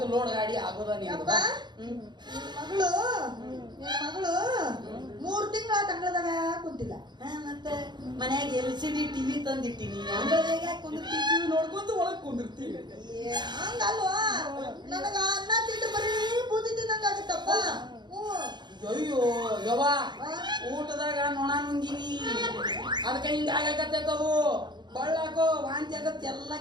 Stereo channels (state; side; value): late; left; 0.21 ms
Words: ಲೋಡ್ ಗಾಡಿ ಆಗೋದ ಮಗಳು 3 ತಿಂಗಳ ತಂಗಳದಾಗ ಕುಂತಿಲ್ಲ ಮತ್ತೆ ಮನ್ಯಾಗ LCD TV ತಂದಿಟ್ಟಿನಿ ಅಂಗಳದಾಗ ಕುಂದಿರ್ತೀವಿ ನೋಡ್ಕೊಂತ ಒಳಗ್ ಕುಂದಿರ್ತೀವಿ ಹಂಗಲ್ವಾ ನನಗ ಅನ್ನ ತಿಂದು ಬರೀ ಬೂದಿ ತಿನ್ನಂಗ ಆಗುತ್ತಪ್ಪ ಅಯ್ಯೋ ಯವ್ವ ಊಟದಾಗ ನೊಣ ನುಂಗಿನಿ ಅದಕ್ಕೆ ಹಿಂಗ ಆಗಕತ್ತದು ಬಳ್ಳಾಕೋ ವಾಂತಿ ಆಗತ್ತೆ ಎಲ್ಲ